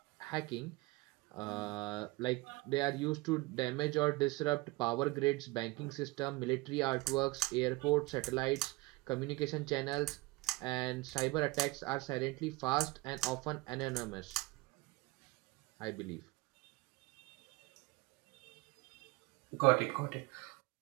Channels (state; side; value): quieter; left; 22.9 dB